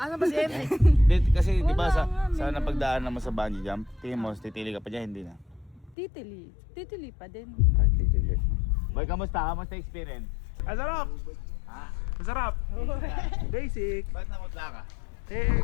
ba si Henry? Kasi di ba Wala sa nga, napagdaan naman sa bungee jump, tingin mo, titili ka pa dyan, hindi na. Titili. Titili pa din. Ah, titili. Boy, kamusta? Kamusta experience? Masarap. Masarap. Basic. Ba't namutla ka?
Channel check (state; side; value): drops out; right; at 6.0 s